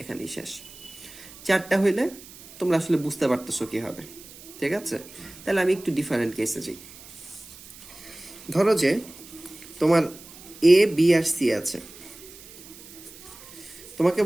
এখানেই শেষ। চারটা হইলে তোমরা আসলে বুঝতে পারতেছো কি হবে, ঠিক আছে? তাহলে আমি একটু ডিফারেন্ট কেসে যাই। ধরো যে তোমার এ বি আর সি আছে, তোমাকে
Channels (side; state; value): right; noise; hiss, 18 dB below the sound